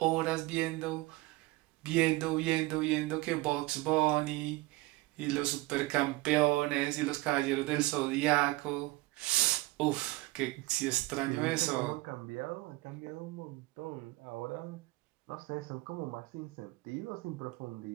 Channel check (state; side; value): quieter; left; 20.4 dB